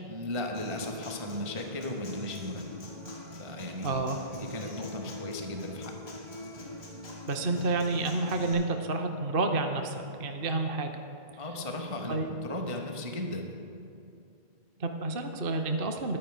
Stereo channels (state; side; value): late; left; 1.5 ms